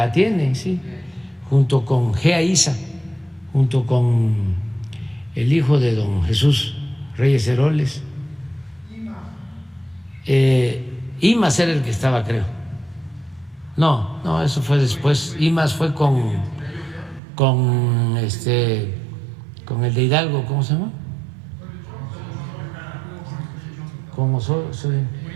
tiene, sí, junto con GEAISA, junto con el hijo de don Jesús Reyes Heroles. Imas era el que estaba, creo. No, eso fue después. Imas fue con el de Hidalgo, ¿cómo se llama?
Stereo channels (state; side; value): drops out; left; at 17.2 s